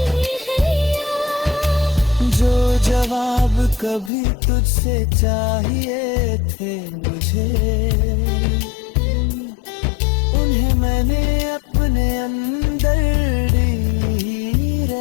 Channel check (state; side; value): drops out; right; at 4.1 s